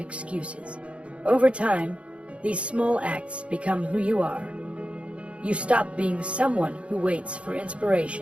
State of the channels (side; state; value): left; late; 0.061 ms